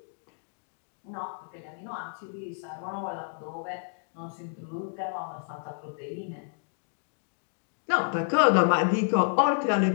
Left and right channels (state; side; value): silent; right; digital silence